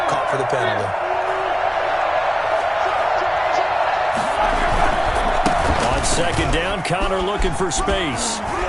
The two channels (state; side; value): identical; both; correlation 1.00